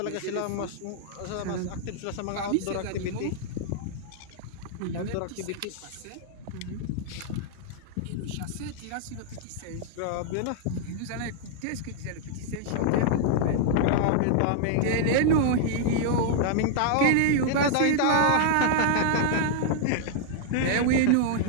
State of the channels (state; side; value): different; both; correlation -0.01